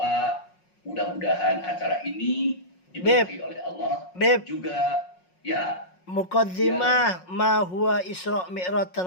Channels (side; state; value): right; late; 5.5 ms